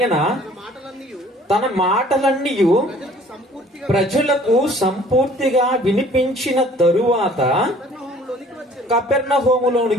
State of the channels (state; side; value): normal; both; correlation 0.53